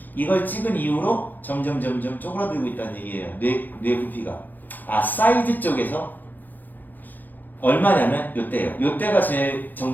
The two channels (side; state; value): right; late; 0.086 ms